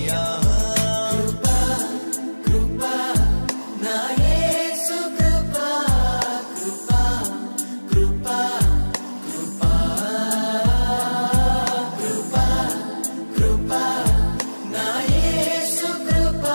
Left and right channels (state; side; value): inverted; both; correlation -1.00